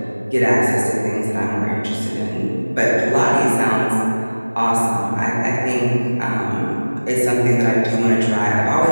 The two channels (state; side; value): inverted; both; correlation -1.00